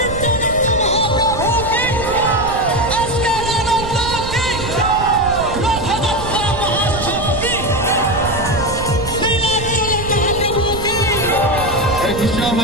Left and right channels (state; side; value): noise; right; rumble, 9 dB below the sound